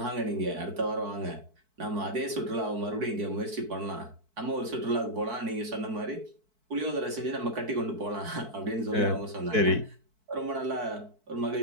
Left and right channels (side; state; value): left; late; 4.6 ms